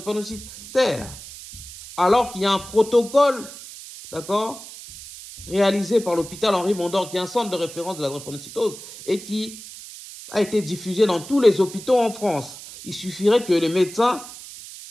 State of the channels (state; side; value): noise; right; hiss, 14 dB below the sound